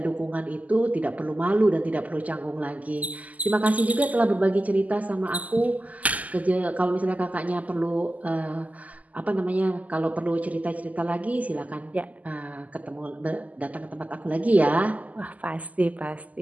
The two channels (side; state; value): left; late; 0.076 ms